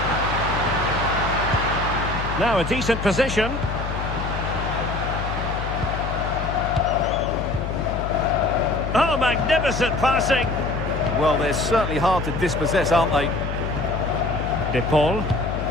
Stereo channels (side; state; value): left; noise; hum, 5 dB below the sound